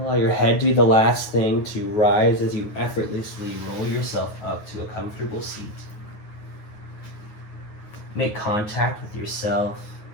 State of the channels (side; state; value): right; late; 9.4 ms